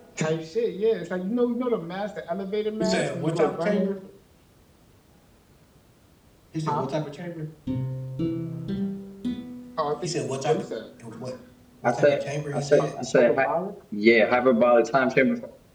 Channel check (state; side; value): identical; both; correlation 1.00